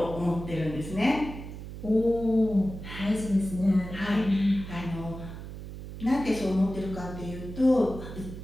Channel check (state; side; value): noise; right; hum, 11 dB below the sound